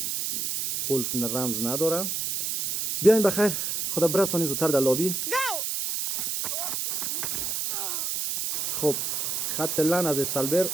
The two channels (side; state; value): right; noise; hiss, 1 dB below the sound